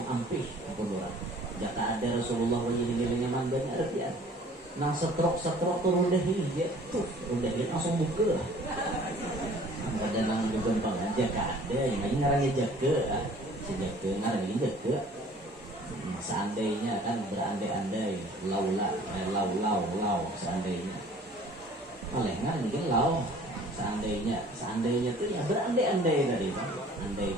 ampih ampun orang. Jika ada Rasulullah banyu-banyunya mangganya artian. Nang setrok turun dahi ya tuh, dahi langsung buka. Ada nang juga aja kada, yang ini ngarangnya jaga, jaga ngarangnya jaga. Seandainya kan berandai-andai, lau seandainya. Oleh ngarangnya lau. Seandainya tuh ya berandai-andai tadi Pak.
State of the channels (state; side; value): normal; both; correlation 0.51